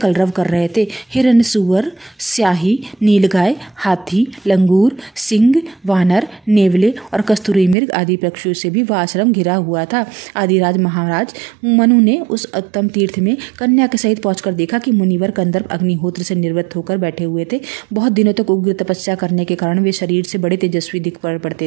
कर रहे थे। हिरण, सुअर, स्याही, नीलगाय, हाथी, लंगूर, सिंह, वानर, नेवले और कस्तूरी मृग आदि पक्षियों से भी वह आश्रम घिरा हुआ था। आदिराज महाराज मनु ने उस उत्तम तीर्थ में कन्या के सहित पहुंचकर देखा कि मुनिवर कंदर्प अग्निहोत्र से निवृत्त होकर बैठे हुए थे। बहुत दिनों तक उग्र तपस्या करने के कारण वे शरीर से बड़े तेजस्वी दिख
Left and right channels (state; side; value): drops out; left; at 7.8 s